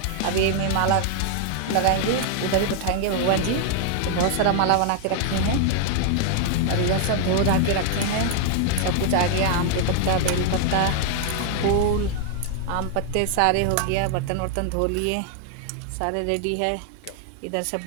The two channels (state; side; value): different; both; correlation 0.00